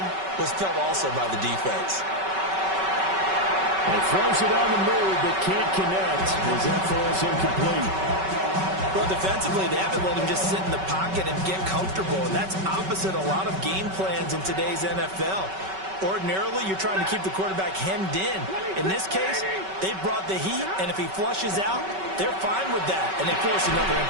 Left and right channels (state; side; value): late; left; 5.3 ms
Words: was felt also by the defense. He throws it on the move, but can't connect as that falls incomplete. Well, defensively, they haven't let him just sit in the pocket and get comfortable. And that's opposite a lot of game plans in today's NFL. Ordinarily, you're trying to keep the quarterback hemmed in. In this case, they brought the heat, and if he flushes out, they're fine with that, and they force another